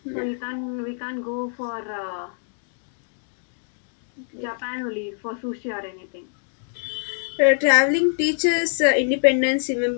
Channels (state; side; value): silent; right; 62 dB below the other